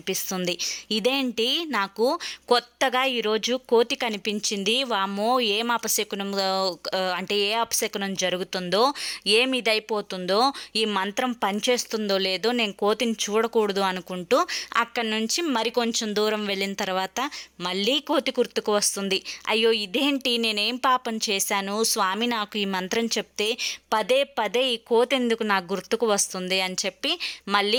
ఇదేంటి, నాకు కొత్తగా ఈరోజు కోతి కనిపించింది, వామ్మో ఏం అపశకునం, అంటే ఏ అపశకునం జరుగుతుందో, ఏమి ఇదైపోతుందో, ఈ మంత్రం పనిచేస్తుందో లేదో, నేను కోతిని చూడకూడదు అనుకుంటూ అక్కడి నుంచి మరికొంచెం దూరం వెళ్ళిన తర్వాత మళ్ళీ కోతి గుర్తుకు వస్తుంది. అయ్యో, ఇదేంటి, నేనేం పాపం చేశాను? స్వామి నాకు ఈ మంత్రం చెప్తే పదే పదే ఈ కోతి ఎందుకు నాకు గుర్తుకు వస్తుంది అని చెప్పి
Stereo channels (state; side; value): identical; both; correlation 1.00